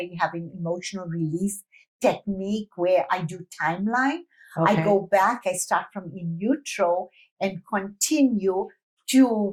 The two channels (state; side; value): identical; both; correlation 1.00